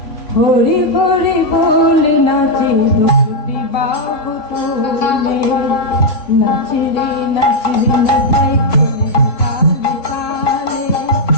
হরি হরি বলে নাচে দুটি বাহু তুলে, নাচরে নাচরে নিতাই কোলে তালে তালে,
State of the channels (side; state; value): right; late; 3.7 ms